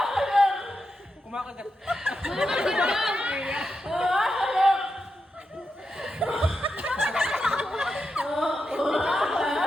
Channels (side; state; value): both; normal; correlation 0.87